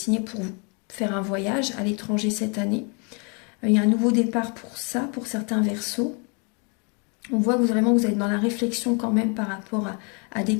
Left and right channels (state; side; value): quieter; right; 35.2 dB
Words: pour faire un voyage à l'étranger cette année. Il y a un nouveau départ pour ça, pour certains verseaux. On voit que vous êtes dans la réflexion quand même par rapport à des